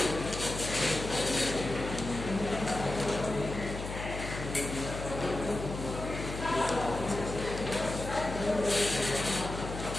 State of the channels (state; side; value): noise; left; hum, 7 dB below the sound